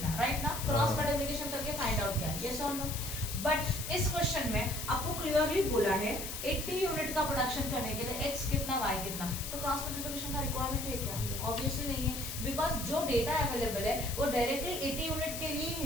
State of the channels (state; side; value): noise; left; hiss, 6 dB below the sound